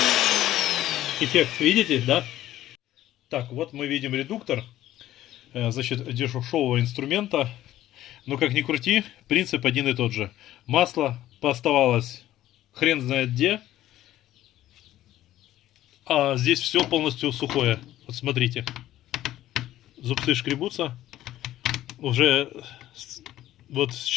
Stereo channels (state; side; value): quieter; right; 13.9 dB